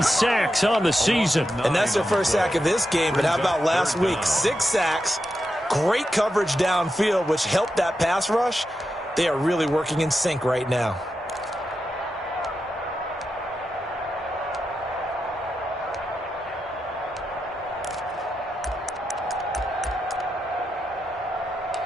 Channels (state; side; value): normal; both; correlation 0.88